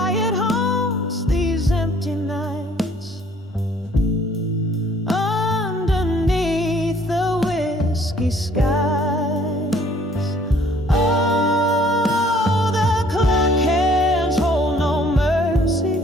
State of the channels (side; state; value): both; normal; correlation 0.58